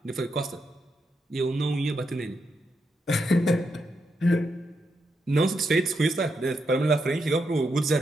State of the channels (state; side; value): normal; both; correlation 0.82